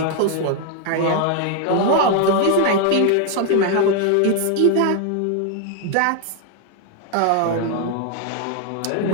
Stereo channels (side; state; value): both; different; correlation 0.01